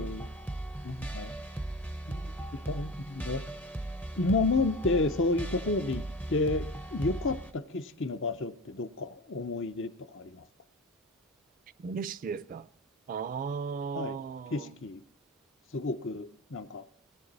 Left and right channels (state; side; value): normal; both; correlation 0.31